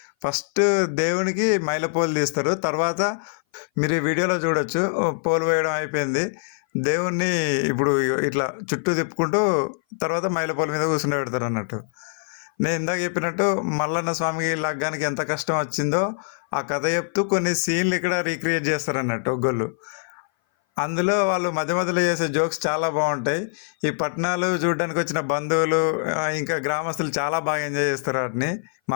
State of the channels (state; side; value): silent; right; 58 dB below the other